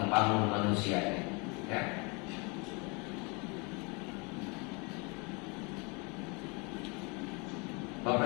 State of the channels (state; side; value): quieter; right; 30.4 dB